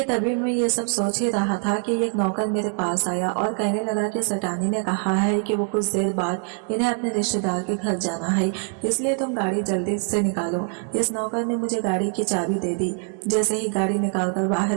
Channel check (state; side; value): quieter; left; 39.8 dB